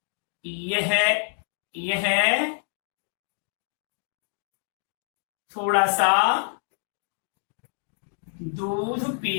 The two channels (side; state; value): right; silent; digital silence